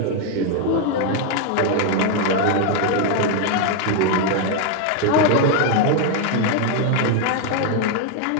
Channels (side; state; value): both; different; correlation 0.01